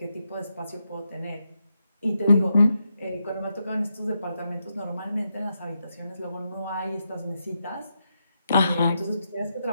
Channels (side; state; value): both; inverted; correlation -0.84